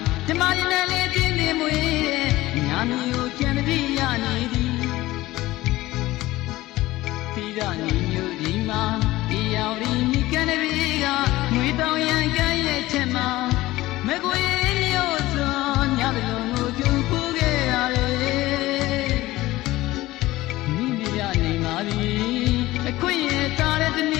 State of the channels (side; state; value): right; quieter; 17.6 dB